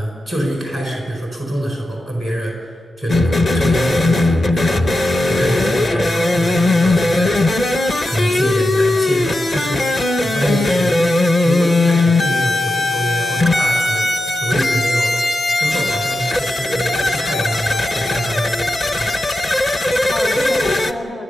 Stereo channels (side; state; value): both; normal; correlation 0.90